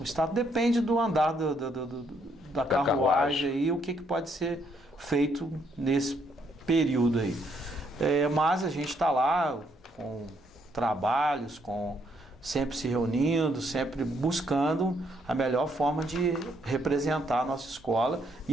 estatuto depende do andar da carruagem e o que pode ser feito nesse período aí. Mas a gente está lá com trabalhos, sempre se reunindo, sempre buscando a melhor forma de representar a nossa escola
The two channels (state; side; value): normal; both; correlation 0.72